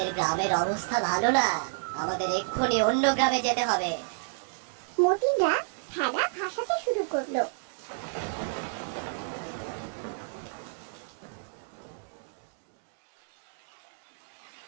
গ্রামের অবস্থা ভালো না, আমাদের এক্ষুনি অন্য গ্রামে যেতে হবে। মতিনরা ভেলা ভাসাতে শুরু করলো।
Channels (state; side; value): silent; left; digital silence